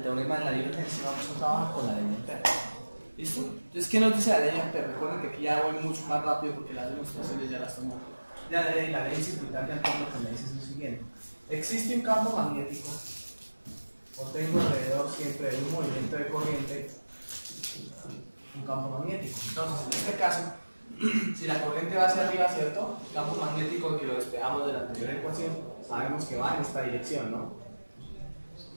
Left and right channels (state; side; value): inverted; both; correlation -1.00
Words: teorema de la divergencia, vamos a trabajar con la ley de Ampère. ¿Listo? Entonces, ¿qué nos dice la ley de Ampère? Recuerden que aquí ya voy mucho más rápido porque las demostraciones ya las tomo. Ya la ley circuital de Ampère lo que me dice es lo siguiente. Existe un campo magnético, o tengo alrededor siempre de un movimiento de corriente, un campo magnético. Entonces, en este caso, si la corriente va hacia arriba, ¿cierto? El campo magnético que lo despejamos de la anterior ecuación, sabemos que va en esta dirección, ¿no?